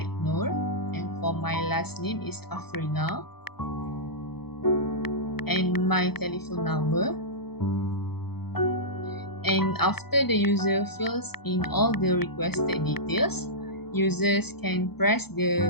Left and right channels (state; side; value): late; right; 0.97 ms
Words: Nur, and for my last name is AFRINA. And my telephone number. And after the user fills in all the requested details, users can press